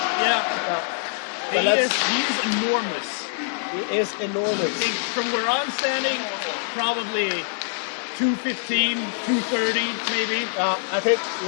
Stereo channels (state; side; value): silent; right; 62 dB below the other